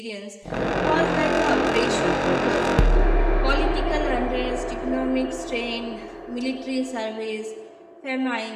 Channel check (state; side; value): identical; both; correlation 1.00